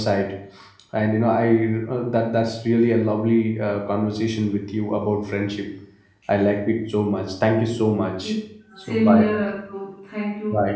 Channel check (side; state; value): both; identical; correlation 1.00